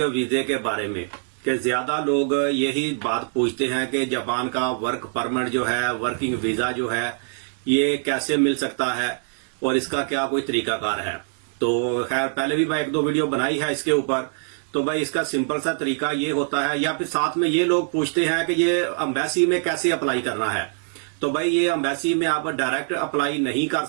वीजे के बारे में कि ज्यादा लोग यही बात पूछते हैं कि जापान का वर्क परमिट जो है, वर्किंग वीजा जो है, ये कैसे मिल सकता है और इसका क्या कोई तरीकाकार है। तो खैर पहले भी मैं एक दो वीडियो बनाई है इसके ऊपर। तो भाई इसका सिंपल सा तरीका ये होता है, या फिर साथ में ये लोग पूछते हैं कि ये एम्बेसी में कैसे अप्लाई करना है। तो भाई ये एम्बेसी में आप डायरेक्ट अप्लाई नहीं कर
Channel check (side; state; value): left; silent; digital silence